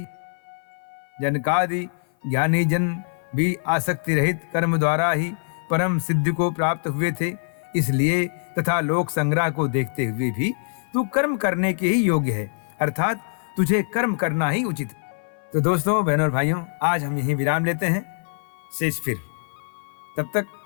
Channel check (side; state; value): right; silent; 56 dB below the other